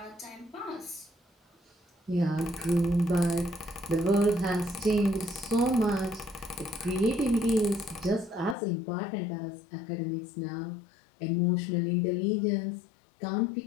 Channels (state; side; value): drops out; right; at 8.6 s